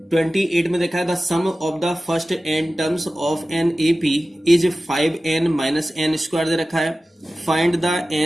28 में देखा है the sum of the first n terms of an AP is 5n minus n square दे रखा है। Find the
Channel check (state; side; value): normal; both; correlation 0.95